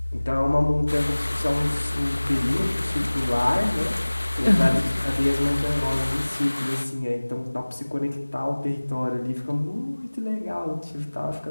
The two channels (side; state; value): both; inverted; correlation -1.00